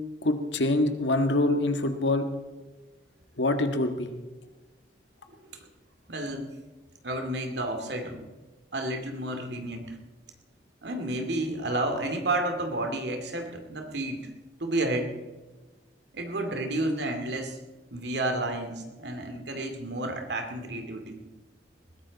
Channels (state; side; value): normal; both; correlation 0.30